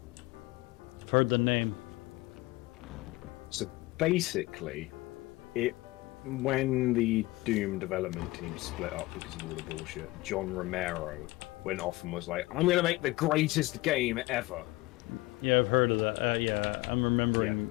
I've heard the name. So basically, when the Doom development team split up because of all the bullshit, John Romero went off and was like, "I'm going to make the greatest game ever." Yeah, I've heard of that. Yeah, I'm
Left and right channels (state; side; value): quieter; right; 20.9 dB